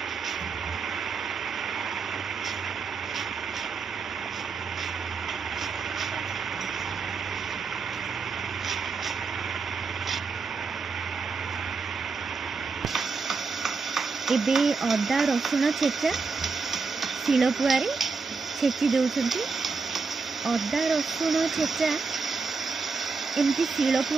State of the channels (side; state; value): left; quieter; 4.7 dB